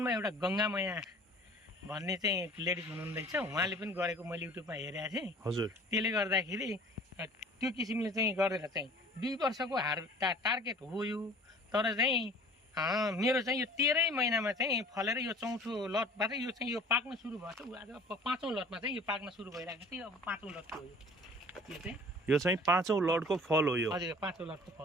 एउटा गङ्गामया भन्ने चाहिँ लेडिज हुनुहुँदैछ, उहाँले पनि गरेको मैले युट्युबमा हेरेको थिएँ। हजुर त्यसले गर्दाखेरि त्यो किसिमले चाहिँ गरेर चाहिँ 2 वर्षको टार्गेट हो यो। तर चाहिँ मेरो चाहिँ यो 13 महिनामा चाहिँ फलेर यो चौथो लटबाट यो चाहिँ यो पाक्न सुरु भएको छ। आज 5औँ लटमा चाहिँ यो पाक्न सुरु भइरहेको थियो। अब 5औँ लटको हो यो चाहिँ 5औँ लटको फल हो यो। हजुर 5औँ लटको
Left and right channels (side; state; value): both; normal; correlation 0.47